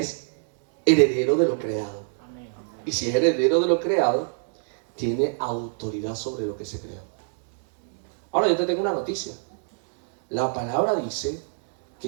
heredero de lo creado. Y si es heredero de lo creado, tiene autoridad sobre lo que se creó. Ahora yo te tengo una noticia. La palabra dice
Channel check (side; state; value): left; silent; digital silence